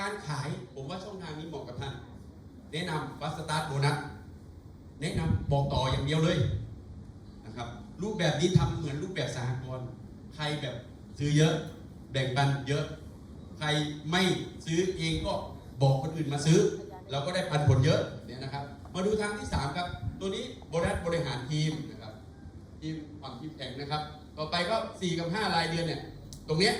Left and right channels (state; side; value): identical; both; correlation 1.00